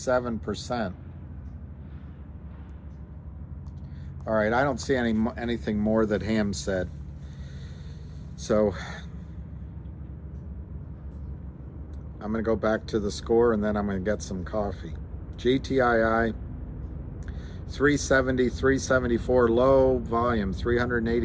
All right, I don't see anything more that Ham said. So I'm going to go back to the score and then I'm going to get some coffee. GTII 370, 374 low volume,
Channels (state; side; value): identical; both; correlation 1.00